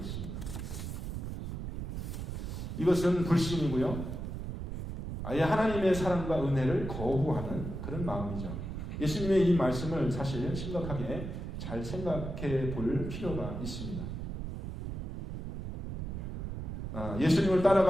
이것은 불신이고요. 아예 하나님의 사랑과 은혜를 거부하는 그런 마음이죠. 예수님의 이 말씀을 사실 심각하게 잘 생각해 볼 필요가 있습니다. 예수님을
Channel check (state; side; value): noise; right; rumble, 6 dB below the sound